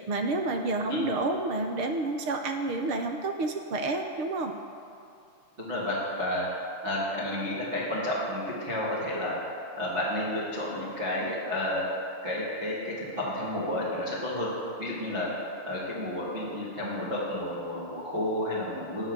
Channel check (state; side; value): late; left; 6.6 ms